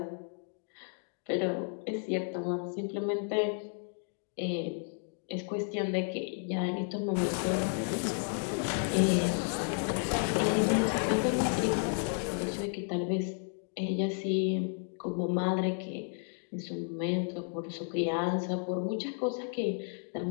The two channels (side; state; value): right; silent; 56 dB below the other